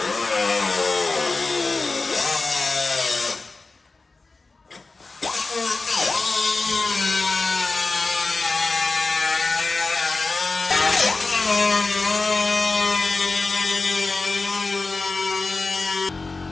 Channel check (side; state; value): right; quieter; 3.7 dB